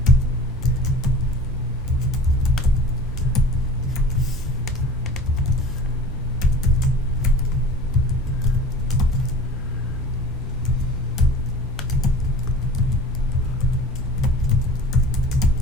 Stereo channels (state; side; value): noise; right; hum, 11 dB below the sound